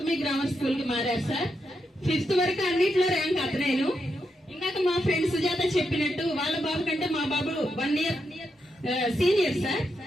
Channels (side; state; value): both; normal; correlation 0.83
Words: గ్రామర్ స్కూల్ కి మారారు సార్. 5th వరకు అన్నిట్లో ర్యాంక్ అతనేను. ఇందాక మా ఫ్రెండ్ సుజాత చెప్పినట్టు వాళ్ళ బాబు కంటే మా బాబు 1 year సీనియర్ సార్,